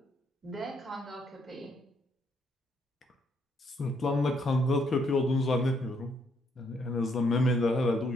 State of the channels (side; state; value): both; normal; correlation 0.72